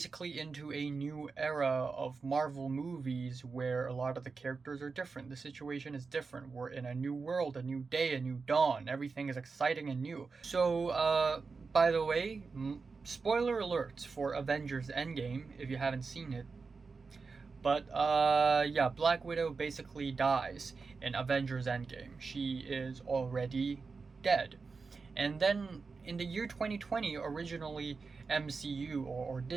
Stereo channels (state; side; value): quieter; left; 4.6 dB